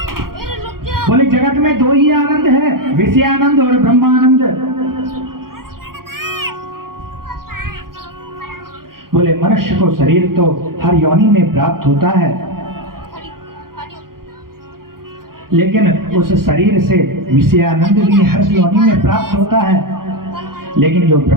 बोले जगत में 2 ही आनंद है, विषयानंद और ब्रह्मानंद। बोले मनुष्य को शरीर तो हर योनि में प्राप्त होता है, लेकिन उस शरीर से विषयानंद भी हर योनि में प्राप्त होता है, लेकिन जो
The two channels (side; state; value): left; late; 0.92 ms